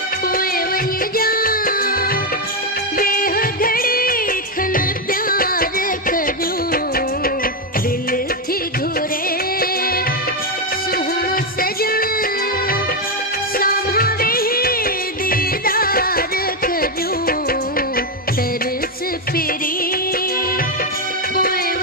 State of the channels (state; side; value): normal; both; correlation 0.05